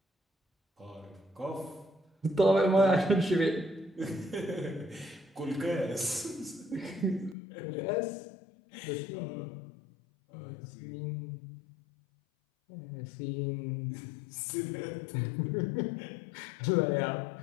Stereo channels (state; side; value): drops out; right; at 7.4 s